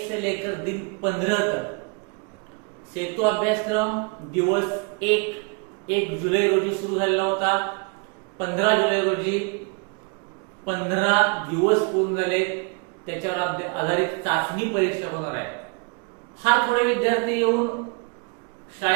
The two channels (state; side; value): quieter; left; 31.8 dB